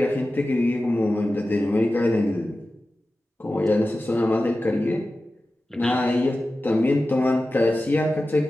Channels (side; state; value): both; normal; correlation 0.94